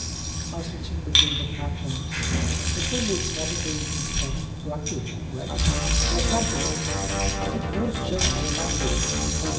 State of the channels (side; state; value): both; identical; correlation 1.00